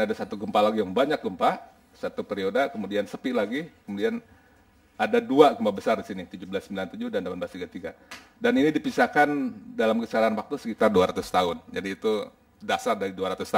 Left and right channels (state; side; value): identical; both; correlation 1.00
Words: ada satu gempa lagi yang banyak gempa, satu periode, kemudian sepi lagi, kemudian ada dua gempa besar di sini, 1797 dan 1833. Dan ini dipisahkan dalam kisaran waktu sekitar 200 tahun. Jadi itu dasar dari 200